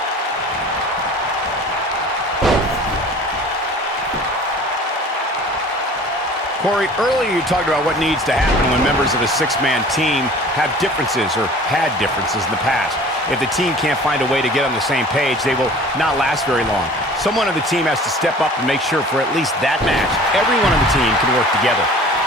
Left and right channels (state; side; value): normal; both; correlation 0.45